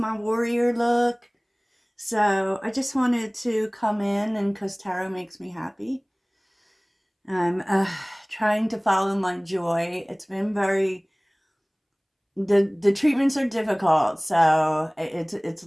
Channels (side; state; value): both; identical; correlation 1.00